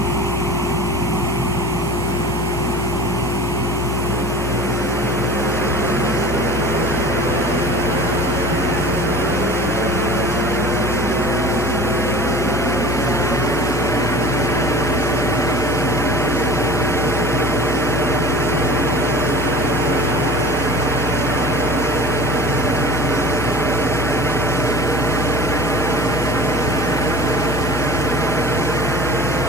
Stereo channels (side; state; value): left; noise; hum, 5 dB below the sound